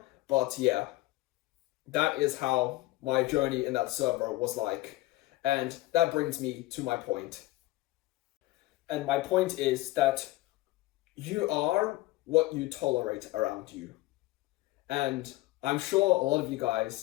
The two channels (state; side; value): quieter; right; 18.6 dB